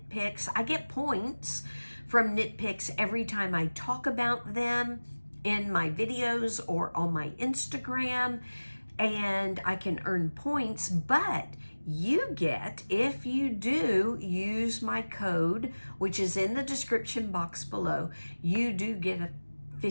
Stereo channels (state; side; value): inverted; both; correlation -1.00